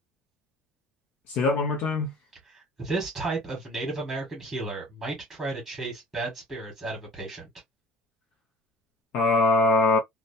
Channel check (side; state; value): both; normal; correlation 0.45